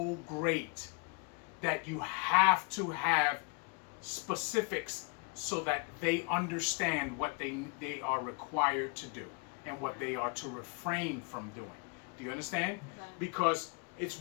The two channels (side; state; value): right; quieter; 32.4 dB